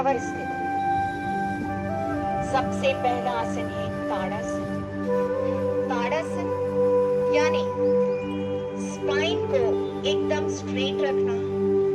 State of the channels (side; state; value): both; identical; correlation 1.00